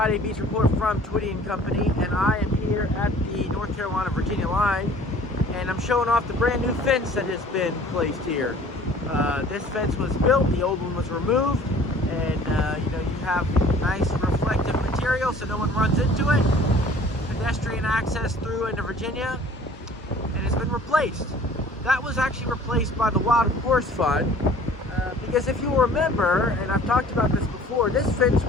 Beach Report from Twitty & Company, and I am here at the North Carolina-Virginia line, and I'm showing off the brand new fence that has been placed here. This fence was built, the old one was removed, and you have nice reflective material so no one runs into it. Pedestrian access through into Virginia, and it's been replaced. That was actually replaced by the Wild Horse Fund. Because if you remember, and I've talked about this before, this fence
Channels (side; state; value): both; normal; correlation 0.50